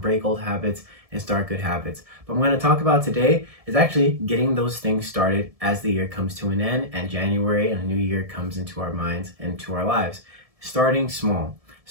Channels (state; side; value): late; left; 1.7 ms